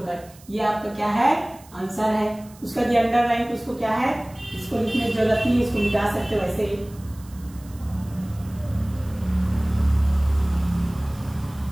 ये आपका क्या है, आंसर है। उसका जो अंडरलाइन उसको क्या है, इसको लिखने की जरूरत नहीं, इसको मिटा सकते हो वैसे ही।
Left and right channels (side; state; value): right; noise; hiss, 24 dB below the sound